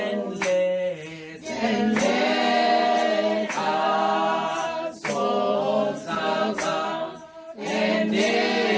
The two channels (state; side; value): identical; both; correlation 1.00